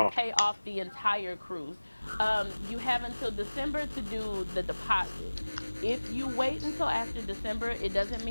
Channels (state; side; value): inverted; both; correlation -1.00